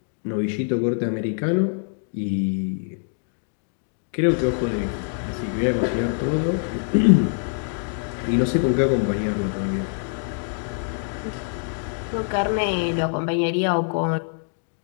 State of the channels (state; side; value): silent; right; 62 dB below the other